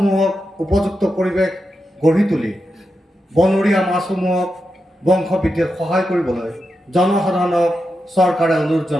উপযুক্ত পৰিৱেশ গঢ়ি তুলি বনৰীয়া মাছসমূহক বংশবৃদ্ধিত সহায় কৰিবলৈ জনসাধাৰণক চৰকাৰে অনুৰোধ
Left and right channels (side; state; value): both; normal; correlation 0.88